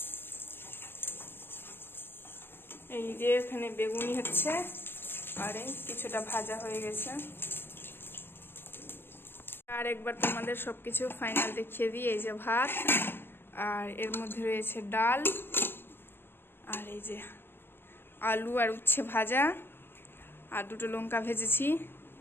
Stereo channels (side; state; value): right; late; 0.10 ms